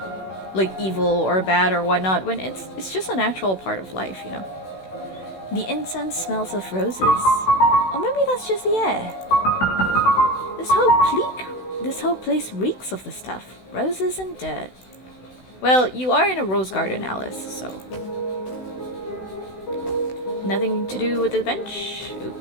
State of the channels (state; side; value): late; right; 16 ms